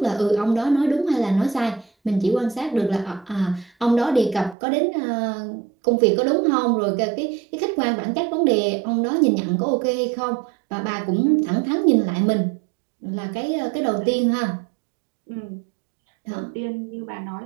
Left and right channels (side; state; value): left; drops out; at 4.5 s